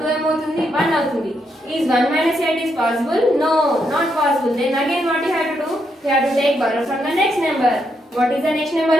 2 ఏమవుతుంది? 1 అవుతుంది. Is 1 minus 8 is possible? No, not possible. Then again what you have to do? You have to take borrow from the next number. What is the next number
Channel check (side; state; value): both; normal; correlation 0.79